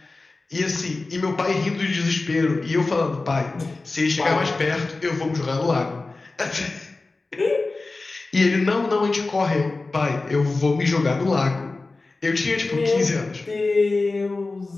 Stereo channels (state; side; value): quieter; right; 3.5 dB